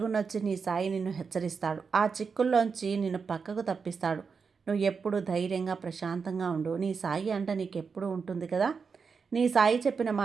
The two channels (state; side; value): quieter; left; 5.5 dB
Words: నీ సాయి నిన్ను హెచ్చరిస్తాడు. ఆ చిక్కుల్లోంచి నిన్ను పక్కకు తప్పిస్తాడు. నువ్వు ఎప్పుడు ధైర్యంగా ప్రశాంతంగా ఉండు. నీ సాయి అంట నీకెప్పుడు ఉంటుంది కదా. నీ సాయి చెప్పిన